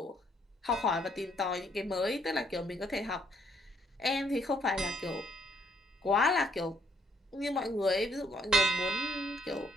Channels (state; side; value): normal; both; correlation 0.69